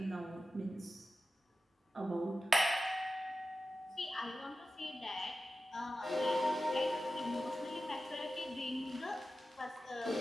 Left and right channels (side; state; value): both; normal; correlation 0.93